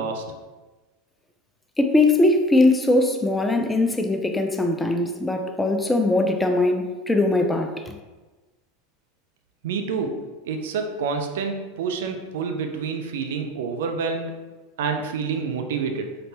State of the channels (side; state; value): both; normal; correlation 0.54